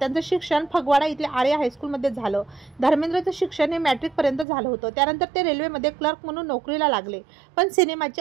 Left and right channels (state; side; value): drops out; left; at 4.5 s